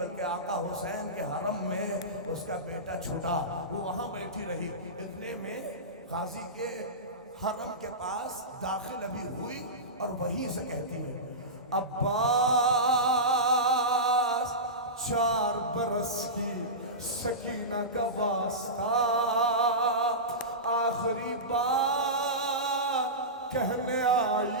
آقا حسین کے حرم میں اس کا بیٹا چھوٹا، وہ وہاں بیٹھی رہی۔ اتنے میں غازی کے حرم کے پاس داخل ابھی ہوئی اور وہیں سے کہتی ہے عباس 4 برس کی سکینہ کا واسطہ، آخری بار کہنے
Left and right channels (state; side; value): normal; both; correlation -0.18